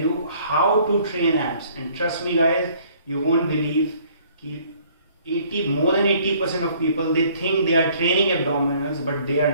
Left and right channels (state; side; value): inverted; both; correlation -0.59